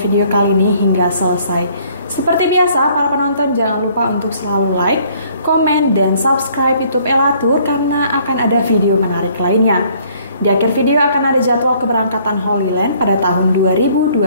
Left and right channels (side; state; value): both; inverted; correlation -0.61